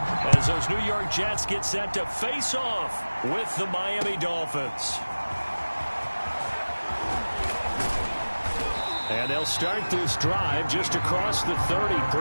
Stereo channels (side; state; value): both; inverted; correlation -1.00